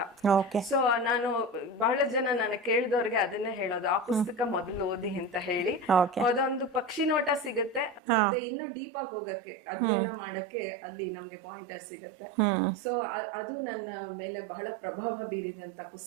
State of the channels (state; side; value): drops out; left; at 8.0 s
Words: ಸೊ ನಾನು ಬಹಳ ಜನ ನನಗೆ ಕೇಳಿದವ್ರಿಗೆ ಅದನ್ನೇ ಹೇಳೋದು, ಆ ಪುಸ್ತಕ ಮೊದಲು ಓದಿ ಅಂತ ಹೇಳಿ. ಅದೊಂದು ಪಕ್ಷಿ ನೋಟ ಸಿಗುತ್ತೆ, ಮತ್ತೆ ಇನ್ನು ಡೀಪ್ ಆಗಿ ಹೋಗಕ್ಕೆ, ಅಧ್ಯಯನ ಮಾಡಕ್ಕೆ ಅಲ್ಲಿ ನಮ್ಗೆ ಪಾಯಿಂಟರ್ಸ್ ಸಿಗುತ್ತೆ. ಸೊ ಅದು ನನ್ನ ಮೇಲೆ ಬಹಳ ಪ್ರಭಾವ ಬೀರಿದಂತ